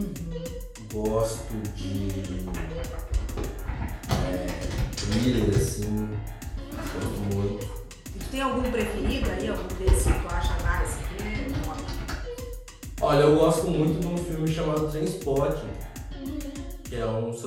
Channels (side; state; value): both; identical; correlation 1.00